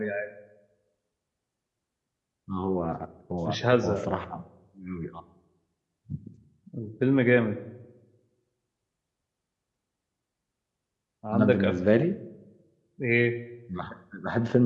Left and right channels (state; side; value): identical; both; correlation 1.00